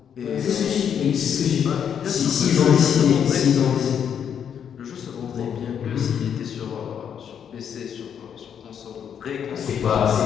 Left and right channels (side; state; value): right; quieter; 8.2 dB